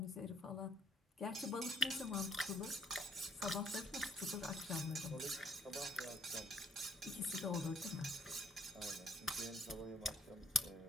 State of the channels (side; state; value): both; normal; correlation 0.64